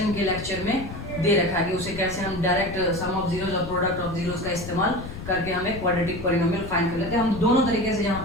के लेक्चर में दे रखा है कि उसे कैसे हम डायरेक्ट सम ऑफ जीरोज और प्रोडक्ट ऑफ जीरोज का इस्तेमाल करके हमें क्वाड्रेटिक पॉलिनोमियल फाइंड कर लेते हैं। हम दोनों तरीके से यहाँ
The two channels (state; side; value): noise; left; rumble, 11 dB below the sound